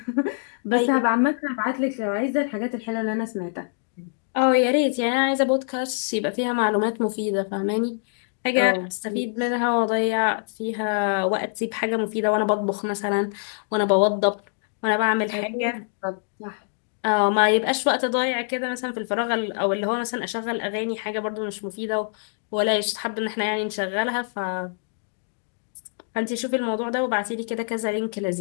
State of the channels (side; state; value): right; silent; digital silence